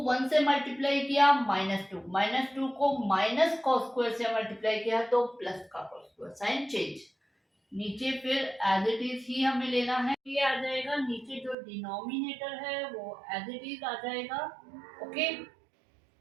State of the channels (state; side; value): drops out; left; at 11.6 s